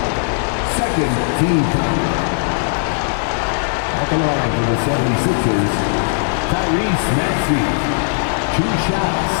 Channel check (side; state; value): right; silent; digital silence